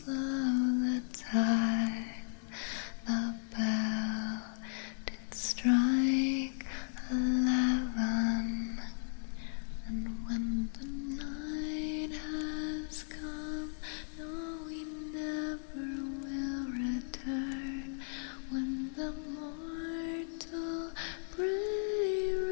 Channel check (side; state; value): right; silent; 54 dB below the other